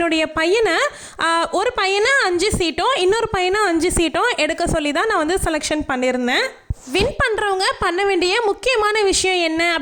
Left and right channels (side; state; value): both; identical; correlation 1.00